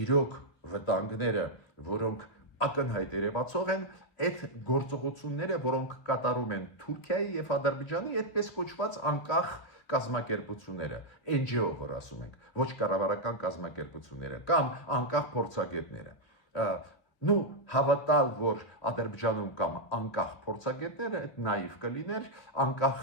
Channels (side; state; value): right; late; 2.9 ms